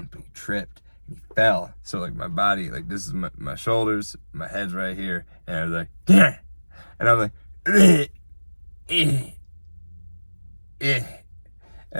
but he tripped and he fell. So like my body, like this is my shoulders, my head's right here, and I was like, yeah, and I'm like,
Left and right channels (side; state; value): both; inverted; correlation -1.00